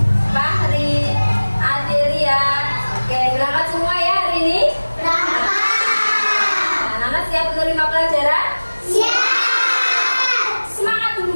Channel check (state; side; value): inverted; both; correlation -1.00